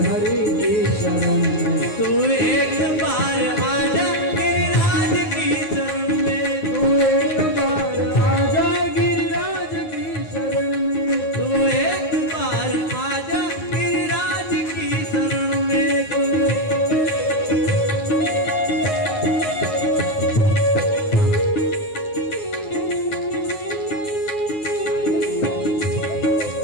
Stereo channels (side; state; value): right; late; 9.5 ms